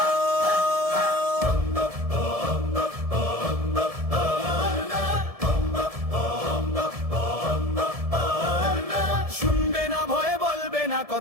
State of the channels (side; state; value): left; late; 1.7 ms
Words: শুনবে না ভয়ে, বলবে না